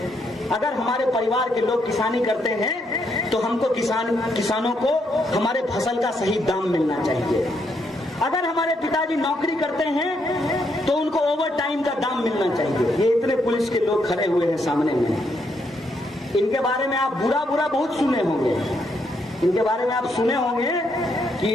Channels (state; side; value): normal; both; correlation 0.76